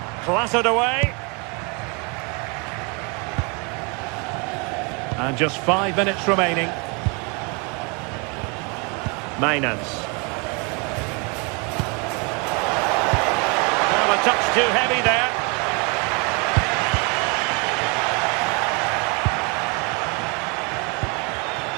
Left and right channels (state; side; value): quieter; left; 32.1 dB